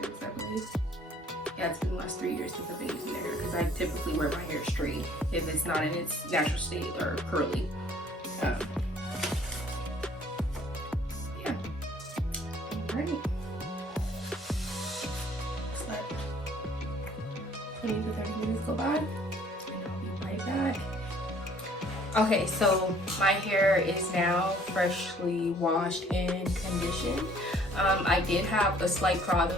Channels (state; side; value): normal; both; correlation 0.57